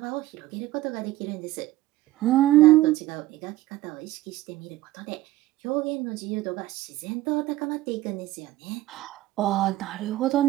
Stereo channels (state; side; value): quieter; left; 16.5 dB